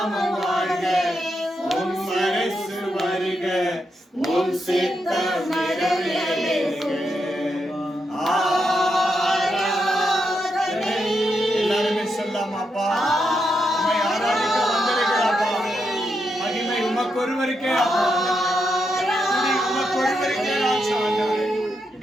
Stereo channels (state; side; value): normal; both; correlation 0.83